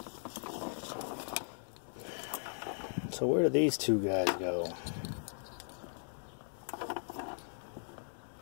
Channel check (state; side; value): silent; right; digital silence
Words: So where do these two guys go?